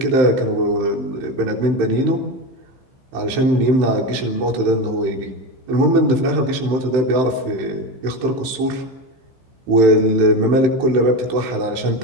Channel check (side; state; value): left; late; 15 ms